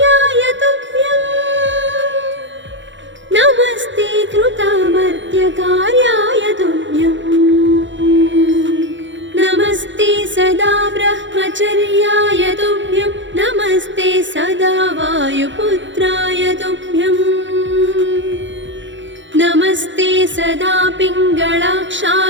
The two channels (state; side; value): late; left; 0.54 ms